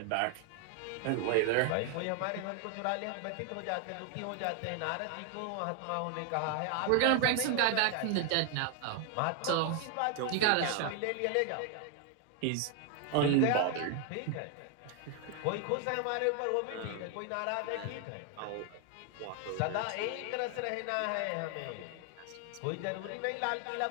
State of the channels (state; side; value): different; both; correlation 0.00